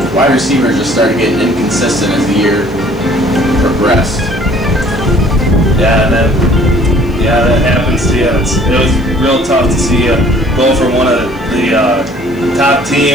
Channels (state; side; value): noise; left; hiss, 30 dB below the sound